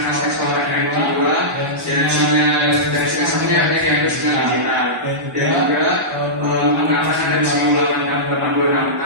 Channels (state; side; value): normal; both; correlation -0.15